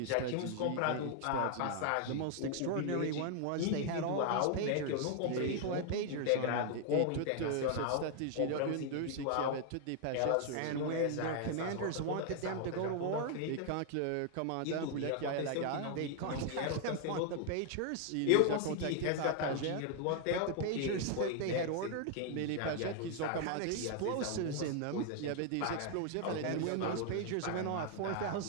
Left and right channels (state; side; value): different; both; correlation 0.00